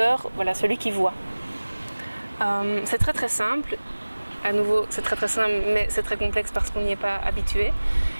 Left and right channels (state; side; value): inverted; both; correlation -1.00